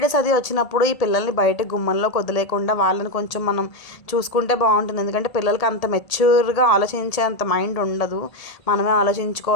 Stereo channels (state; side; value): late; right; 1.8 ms